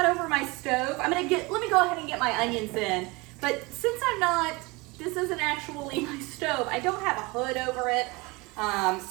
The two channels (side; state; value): left; quieter; 24.8 dB